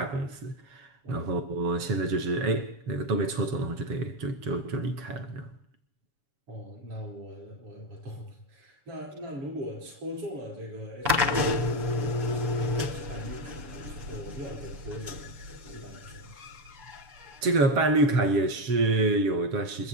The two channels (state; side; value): late; left; 7.1 ms